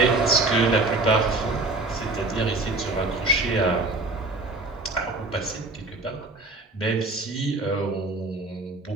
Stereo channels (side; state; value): left; quieter; 3.0 dB